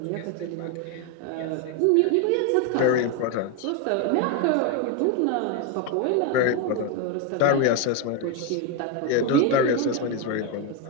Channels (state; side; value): different; both; correlation 0.02